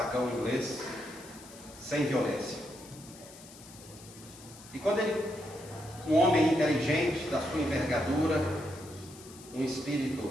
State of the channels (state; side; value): noise; left; hiss, 19 dB below the sound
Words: inglês sem violência. E quando um homem inteligente, da sua envergadura, um